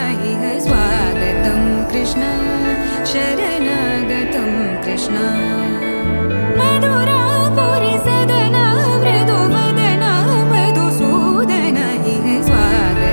इह स्वागतं कृष्ण शरणागतं कृष्ण मधुरापुरि सदन मृदुवदन मधुसूदन इह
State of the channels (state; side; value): inverted; both; correlation -1.00